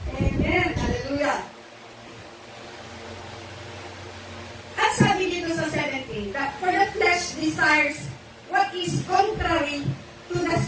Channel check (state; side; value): identical; both; correlation 1.00